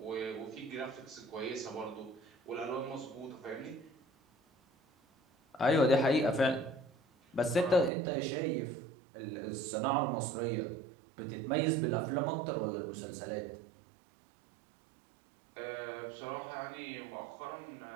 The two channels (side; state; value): left; drops out; at 7.9 s